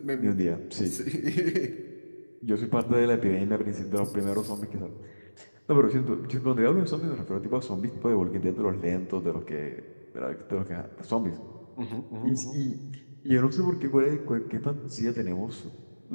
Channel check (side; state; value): both; inverted; correlation -1.00